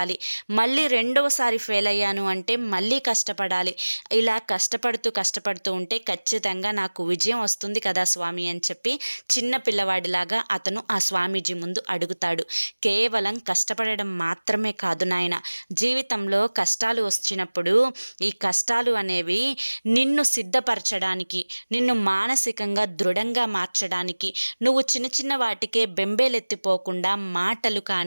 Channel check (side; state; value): both; inverted; correlation -1.00